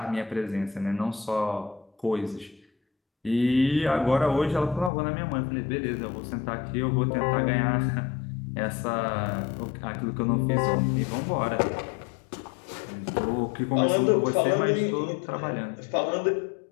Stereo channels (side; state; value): right; drops out; at 4.9 s